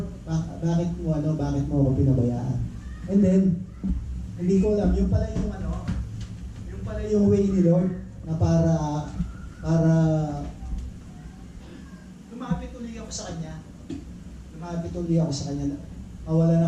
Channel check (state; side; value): identical; both; correlation 1.00